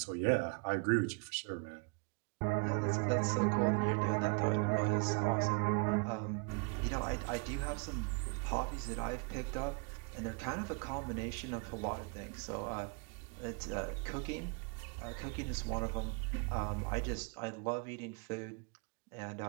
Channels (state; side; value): quieter; left; 32.6 dB